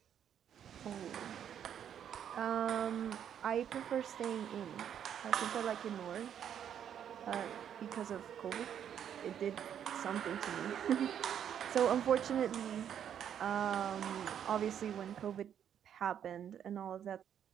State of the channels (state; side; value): quieter; left; 9.2 dB